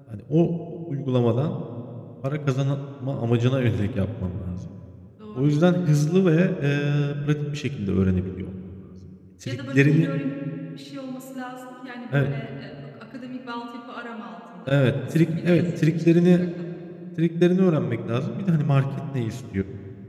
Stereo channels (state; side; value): identical; both; correlation 1.00